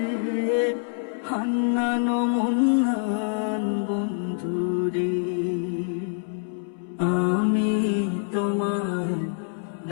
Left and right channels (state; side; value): silent; right; 61 dB below the other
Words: হান্নান মন্নান বন্ধুরে। আমি তোমায়